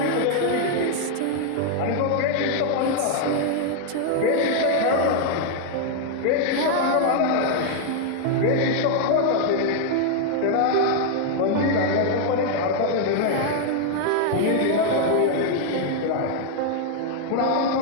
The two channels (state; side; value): different; both; correlation 0.00